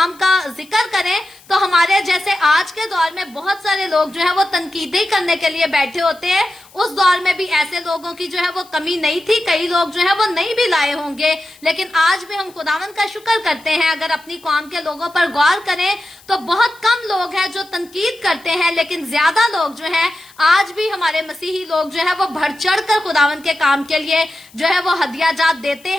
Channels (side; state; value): left; noise; hiss, 26 dB below the sound